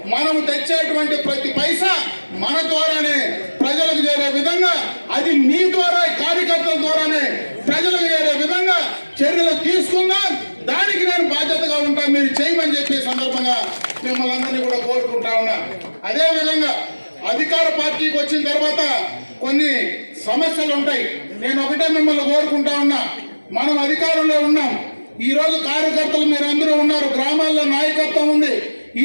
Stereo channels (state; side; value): inverted; both; correlation -1.00